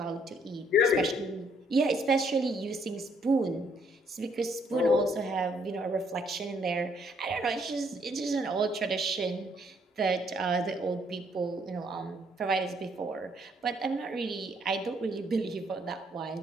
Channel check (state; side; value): normal; both; correlation 0.68